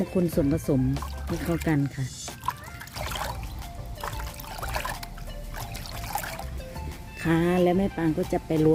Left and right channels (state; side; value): identical; both; correlation 1.00